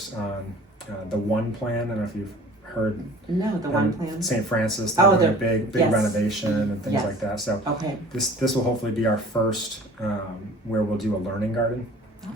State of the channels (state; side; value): normal; both; correlation 0.46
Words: on the One Plan. I don't know if you've heard. No, the One Plan. St. Francis, they're doing a big yes. renovation and things like that. So Okay. this will hopefully be our first where we'll do a learning garden